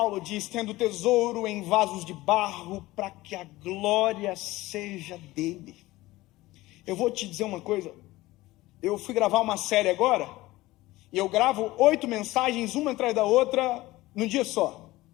diz, tendo tesouro em vasos de barro, para que a glória seja dele. Eu vou te dizer uma coisa, eu fui gravar uma série agora, e eu gravo 8 mensagens, uma atrás da outra, num dia só.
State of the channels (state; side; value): quieter; right; 18.4 dB